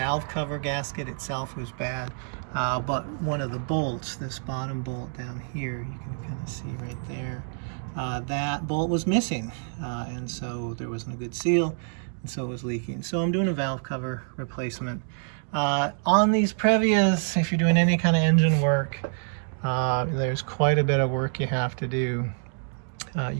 cover gasket itself was bad, but one of the bolts, this bottom bolt down here, you can kind of see right there, that bolt was missing, and so there wasn't a good seal, and so it was leaking. So I'm doing a valve cover replacement. On these Previas, if you're doing any kind of engine work, there's quite a bit of work you have to do.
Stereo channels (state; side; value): silent; left; 60 dB below the other